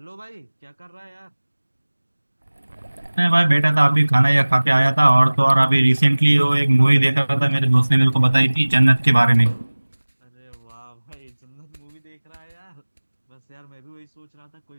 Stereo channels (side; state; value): both; inverted; correlation -1.00